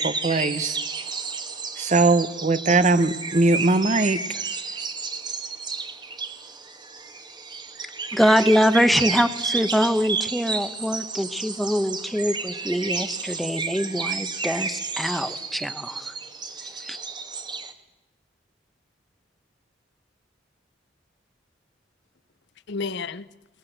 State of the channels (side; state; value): both; normal; correlation 0.63